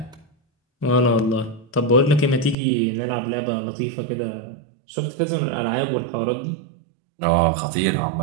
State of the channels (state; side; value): drops out; left; at 2.6 s